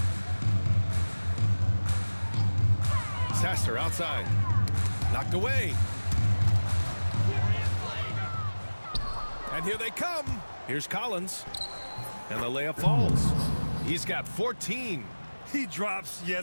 Sasser outside. Knocked away. And here they come. Here's Collins. And the layup falls. He's got 14. He drops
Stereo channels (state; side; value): inverted; both; correlation -1.00